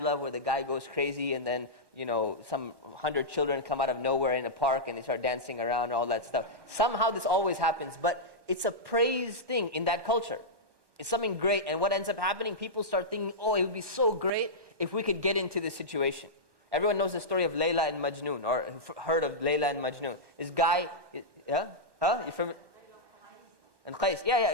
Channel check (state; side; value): late; left; 1.2 ms